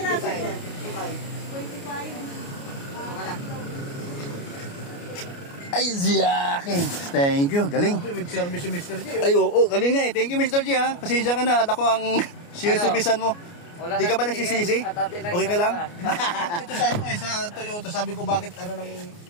Ay, Ziyakin. Thank you, galing. Service si Mr. G. Ay, oo, galing nga eh. Thank you, Mr. G, ha. Pasensya ka na at ako ang siniservisan mo. Di ka ba nagsisisi? Okay ka lang? Ito sa Toyota, sabi ko bakit ng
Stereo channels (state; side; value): late; right; 29 ms